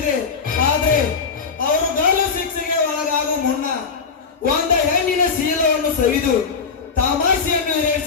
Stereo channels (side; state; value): right; quieter; 5.3 dB